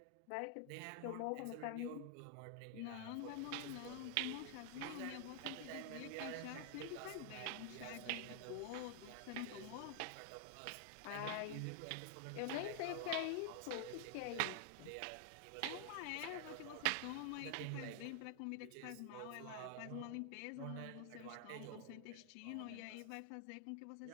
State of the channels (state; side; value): different; both; correlation 0.00